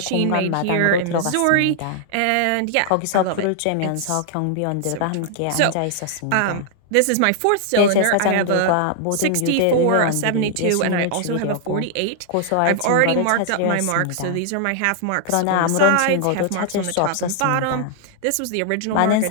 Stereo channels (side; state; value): both; different; correlation -0.01